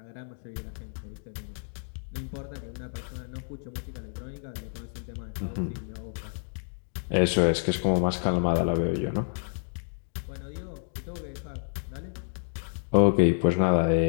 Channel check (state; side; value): silent; right; digital silence